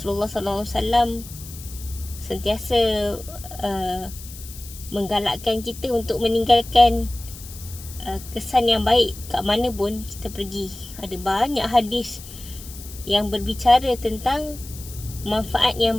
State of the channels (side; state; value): left; noise; hiss, 15 dB below the sound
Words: SAW sentiasa menggalakkan kita untuk meninggalkan kesan yang baik kat mana pun kita pergi. Ada banyak hadis yang berbicara tentang manfaat